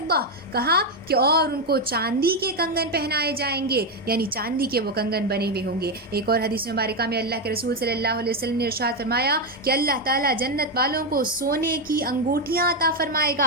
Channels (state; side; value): normal; both; correlation 0.06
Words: کہا کہ اور ان کو چاندی کے کنگن پہنائے جائیں گے، یعنی چاندی کے وہ کنگن بنے ہوئے ہوں گے. ایک اور حدیث مبارکہ میں اللہ کے رسول صلی اللہ علیہ وسلم نے ارشاد فرمایا کہ اللہ تعالیٰ جنت والوں کو سونے کی انگوٹھیاں عطا فرمائے